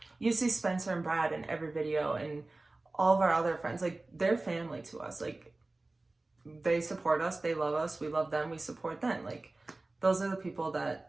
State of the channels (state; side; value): quieter; left; 3.1 dB